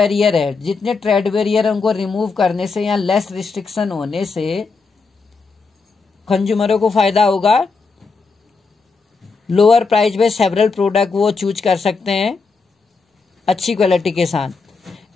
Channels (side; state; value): right; quieter; 4.5 dB